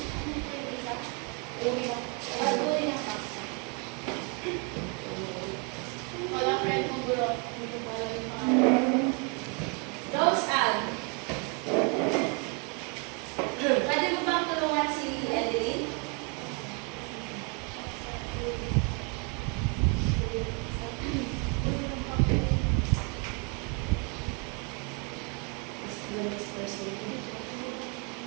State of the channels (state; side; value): quieter; left; 34.5 dB